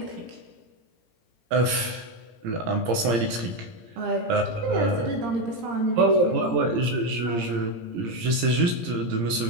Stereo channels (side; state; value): left; late; 17 ms